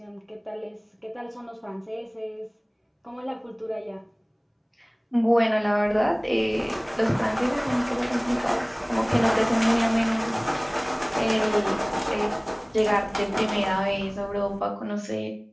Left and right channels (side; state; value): both; identical; correlation 1.00